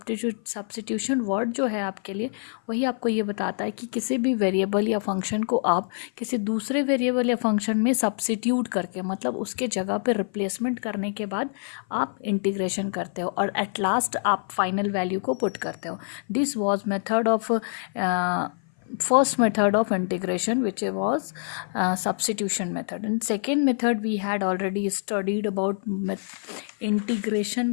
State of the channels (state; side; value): silent; right; 55 dB below the other